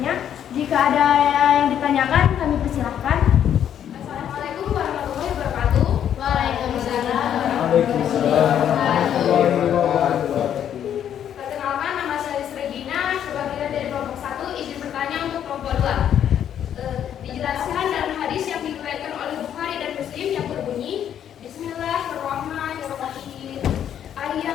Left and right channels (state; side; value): quieter; right; 9.7 dB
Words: Jika ada yang ditanyakan, kami persilahkan. Assalamualaikum warahmatullahi wabarakatuh. Waalaikumsalam. Perkenalkan, nama saya Regina. Sebagai dari kelompok 1, izin bertanya untuk kelompok 2. Dijelaskan dalam hadis yang diriwayatkan oleh Bukhari dan Muslim yang berbunyi, Bismillahirrahmanirrahim.